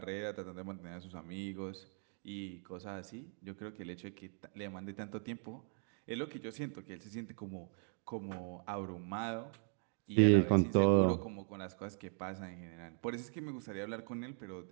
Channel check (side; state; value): left; silent; 51 dB below the other